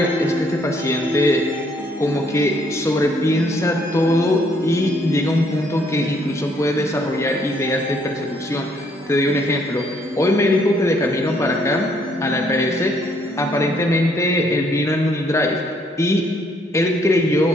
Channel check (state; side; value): normal; both; correlation 0.67